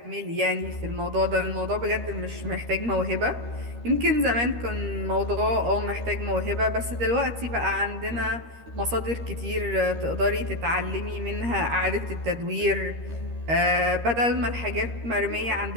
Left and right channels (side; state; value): left; late; 13 ms